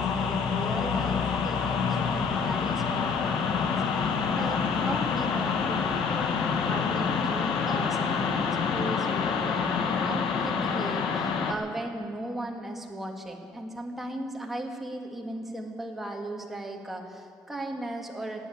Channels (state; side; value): quieter; right; 4.5 dB